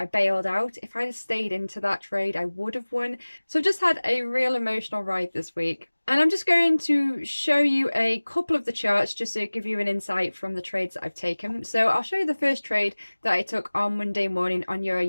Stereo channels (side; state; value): both; inverted; correlation -1.00